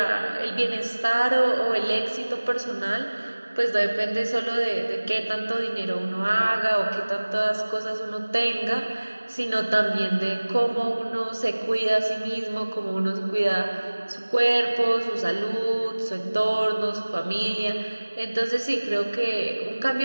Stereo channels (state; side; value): inverted; both; correlation -1.00